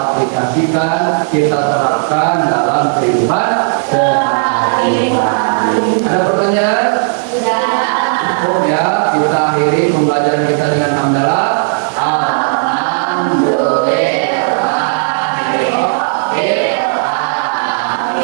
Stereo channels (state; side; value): silent; left; digital silence